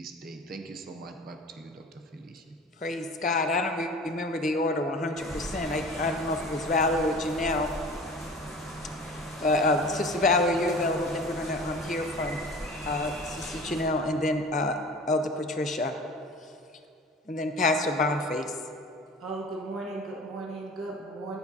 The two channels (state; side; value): normal; both; correlation 0.40